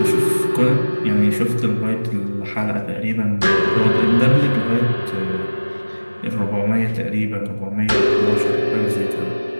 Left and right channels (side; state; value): both; inverted; correlation -1.00